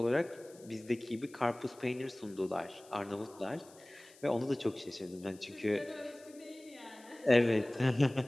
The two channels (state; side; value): noise; left; hiss, 24 dB below the sound